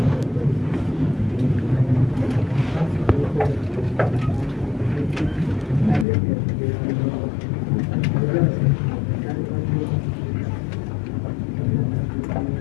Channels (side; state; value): right; drops out; at 6.1 s